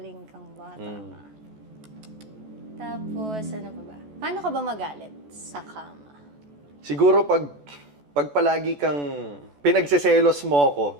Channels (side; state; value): left; late; 14 ms